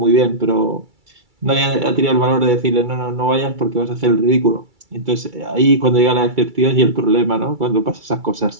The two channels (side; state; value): left; late; 2.3 ms